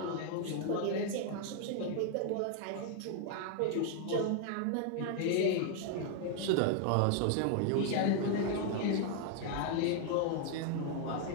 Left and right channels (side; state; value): both; different; correlation 0.00